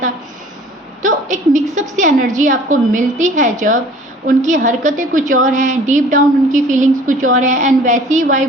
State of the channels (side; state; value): both; normal; correlation 0.50